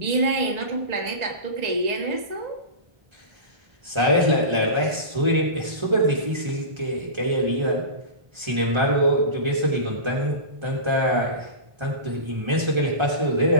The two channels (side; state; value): left; late; 1.3 ms